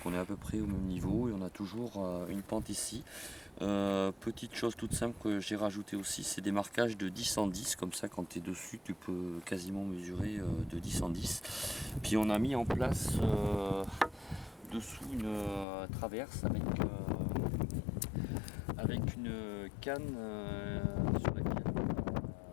on est à peu près au même niveau et on a toujours une pente ici. Petite chose toute simple que j'ai rajouté aussi, c'est des marquages de 10 en 10, comme ça quand tu es dessus tu peux quasiment mesurer de 10 en 10. Puis on a mis en place dessous une traverse avec une canne sur laquelle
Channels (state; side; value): drops out; right; at 15.7 s